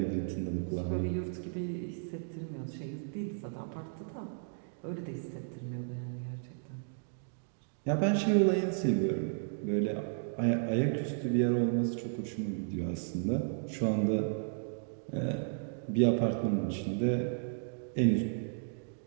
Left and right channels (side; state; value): left; silent; digital silence